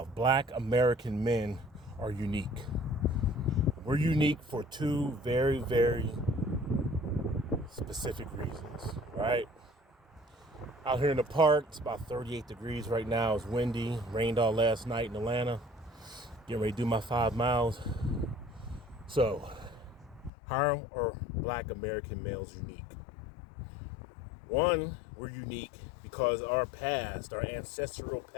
Black American men are unique. We're unique for two very, very specific reasons, right? Out here in the park, it's about 38 degrees right now. It's windy, rained all last night in Atlanta. Getting ready to do my 5 miles. So, how are Black American males unique? One, we're unique because our past, our ancestral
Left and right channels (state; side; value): drops out; right; at 20.3 s